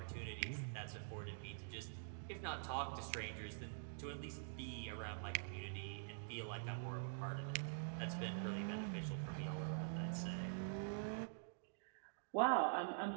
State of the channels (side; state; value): left; silent; digital silence